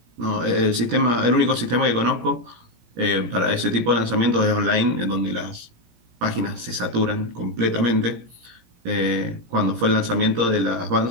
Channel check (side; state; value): left; late; 17 ms